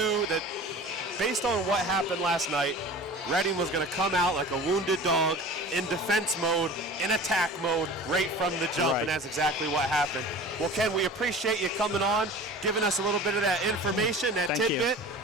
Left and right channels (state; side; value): normal; both; correlation 0.39